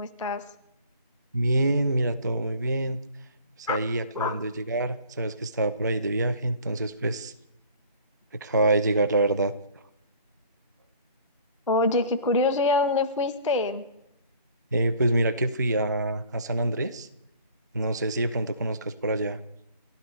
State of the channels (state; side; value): inverted; both; correlation -0.51